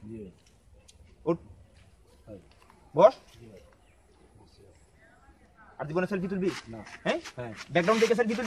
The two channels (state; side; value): identical; both; correlation 1.00